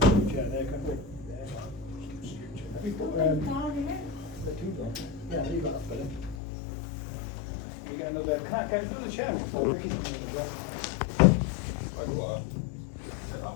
chair there, can we? Have you put the two down? Yeah, leave that better. You get another, can I get another chair before Ricky comes in as well?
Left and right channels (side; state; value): right; drops out; at 6.4 s